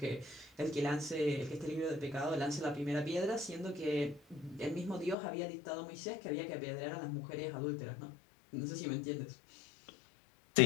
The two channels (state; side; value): drops out; right; at 5.2 s